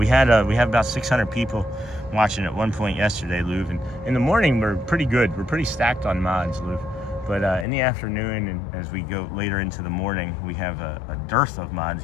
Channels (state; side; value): drops out; right; at 7.7 s